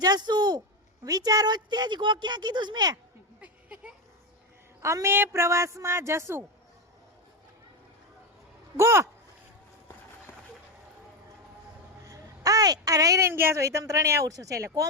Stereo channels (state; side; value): normal; both; correlation 0.10